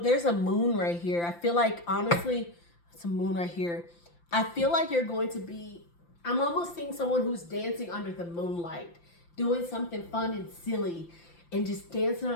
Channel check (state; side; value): late; right; 5.8 ms